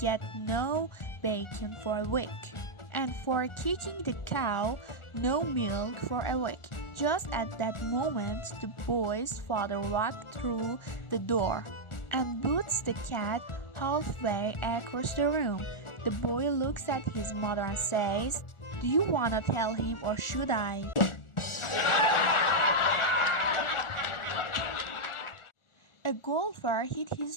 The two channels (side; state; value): right; late; 1.4 ms